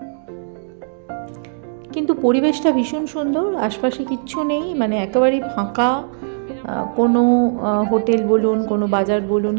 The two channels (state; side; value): silent; left; digital silence